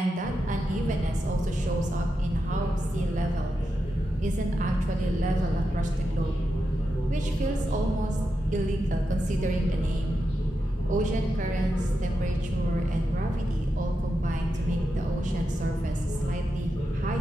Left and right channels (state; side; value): normal; both; correlation 0.88